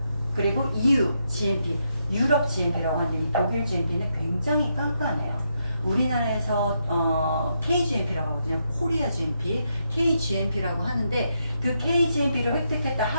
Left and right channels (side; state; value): both; inverted; correlation -0.80